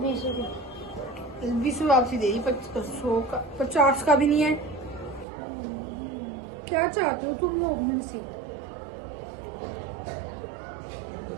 रुपए। 20 वापसी दे दी, 100 का, 50 का भी नहीं है। क्या चाहते हो तुम लोग मेरे से?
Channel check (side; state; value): left; drops out; at 5.2 s